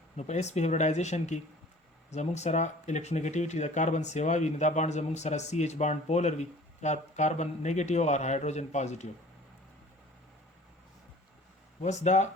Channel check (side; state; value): both; normal; correlation 0.47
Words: نو په sp هیبریډایزیشن کې زموږ سره الکترونیګټیویټي د کاربن سیوا وي نو دا بانډ زموږ سره CH بانډ پولر وي یا کاربن نیگیټیو او هایدروجن پازیټیو وس دا